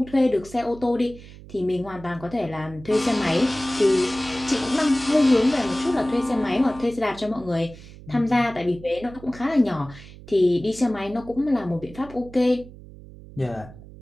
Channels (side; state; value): right; noise; hum, 18 dB below the sound